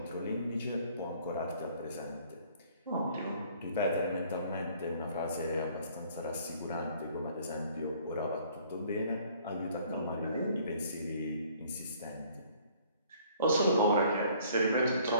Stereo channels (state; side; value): inverted; both; correlation -0.58